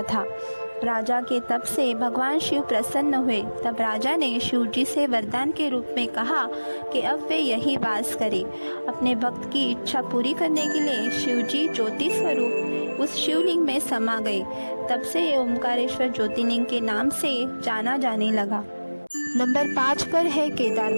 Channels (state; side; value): inverted; both; correlation -1.00